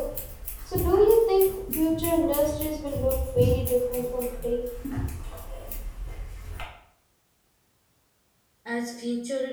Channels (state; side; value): identical; both; correlation 1.00